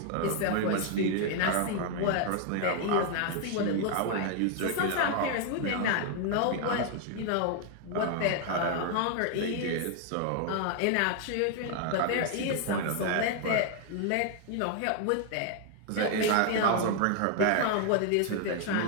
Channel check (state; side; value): different; both; correlation 0.00